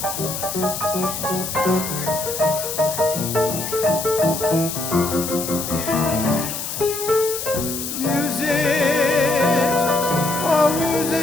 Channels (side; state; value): left; noise; hiss, 5 dB below the sound